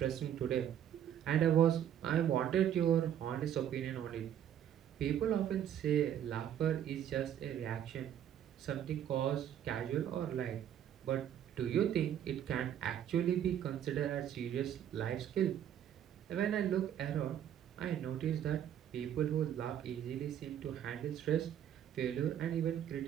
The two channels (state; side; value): quieter; left; 10.1 dB